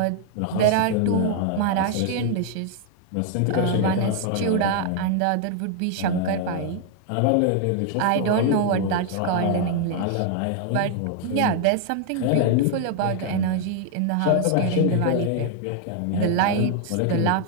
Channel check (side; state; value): both; different; correlation 0.00